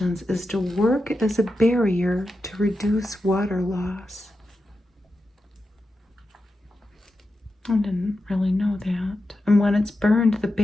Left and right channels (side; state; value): both; normal; correlation 0.89